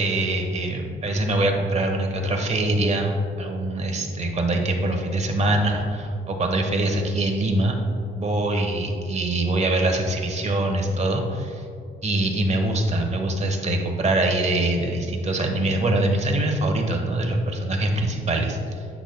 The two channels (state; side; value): normal; both; correlation 0.61